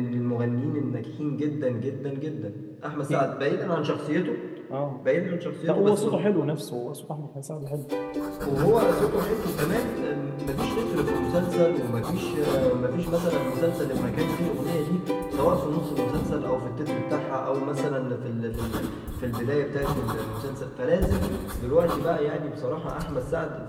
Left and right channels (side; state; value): both; identical; correlation 1.00